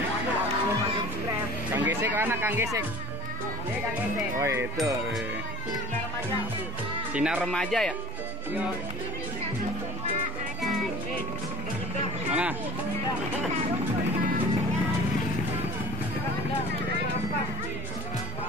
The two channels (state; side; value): normal; both; correlation 0.48